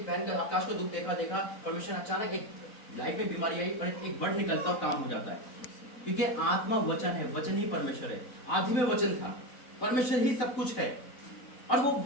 बहन का आकाश को दुख देखा, परमेश्वर अचानक एक लाइफ में बीमारी आई और एक वर्ड निकलता और काम हो जाता है। क्योंकि आत्मा वचन है, वचन ही परमेश्वर है। आदि में वचन था, परमेश्वर ही सब कुछ है, और वो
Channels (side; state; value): right; late; 4.0 ms